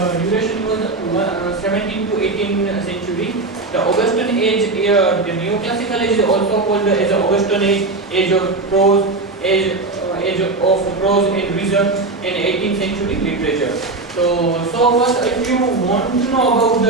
duration was 17th to 18th century. The Augustan age, the neoclassical age is also called as the Augustan age, age of prose, age of prose and reason, and 18th century literature. So first, if you want to know about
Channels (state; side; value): quieter; left; 3.4 dB